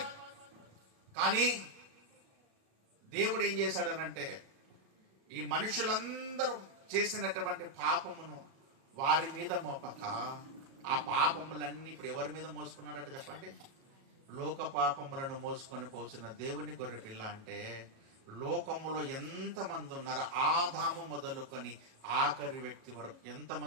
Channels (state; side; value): late; left; 37 ms